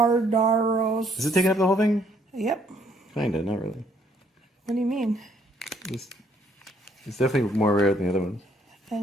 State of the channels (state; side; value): normal; both; correlation 0.67